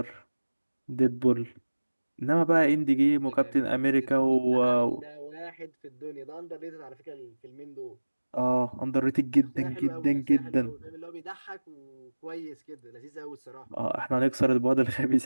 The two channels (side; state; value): both; inverted; correlation -1.00